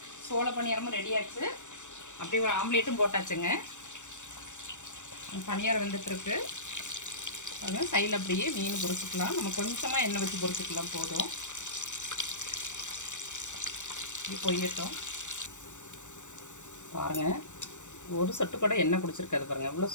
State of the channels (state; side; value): late; right; 0.85 ms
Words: சோள பணியாரமும் ரெடி ஆச்சு. அப்படியே ஒரு ஆம்லேட்டும் போட்டாச்சுங்க. பணியாரம் வெந்துட்டுருக்கு. பாருங்கள் சைடில் அப்படியே மீன் பொரிச்சிக்கலாம். நம்ம கொஞ்சமாக எண்ணெய் வச்சு பொரிச்சிக்கலாம் போதும். இப்படி பொரியட்டும். பாருங்கள் ஒரு சொட்டு கூட எண்ணெய் குடிச்சிருக்காது. பாருங்கள் எவ்வளோ